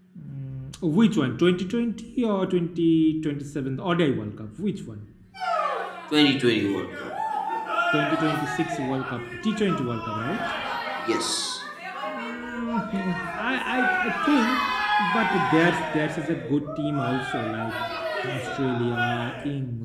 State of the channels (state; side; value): identical; both; correlation 1.00